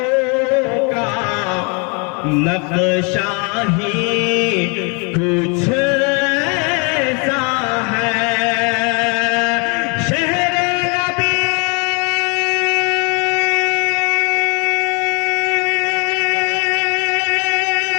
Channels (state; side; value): quieter; right; 33.4 dB